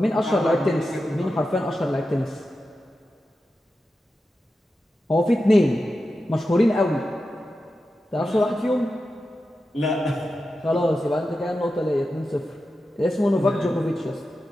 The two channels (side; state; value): both; normal; correlation 0.91